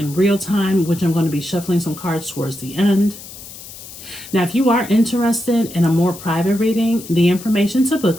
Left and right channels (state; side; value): noise; left; hiss, 15 dB below the sound